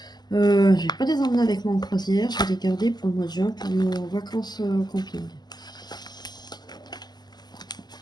Je vais pas les emmener avec moi en croisière. Je vais les garder pour le mois de juin pour nos vacances camping.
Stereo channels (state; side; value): late; right; 0.20 ms